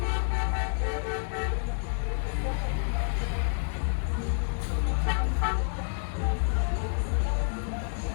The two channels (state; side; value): silent; right; digital silence